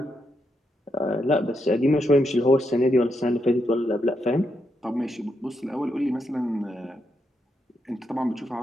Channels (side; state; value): both; normal; correlation 0.81